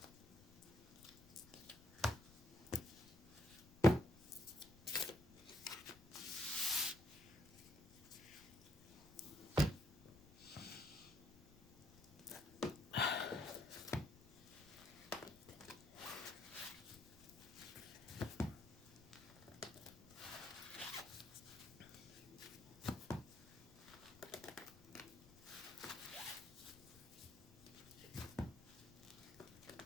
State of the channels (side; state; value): left; noise; rumble, 22 dB below the sound